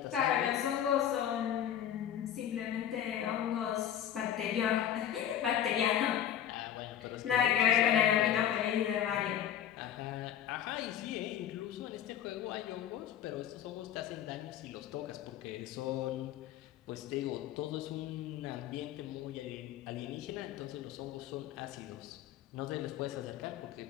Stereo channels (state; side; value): quieter; right; 10.3 dB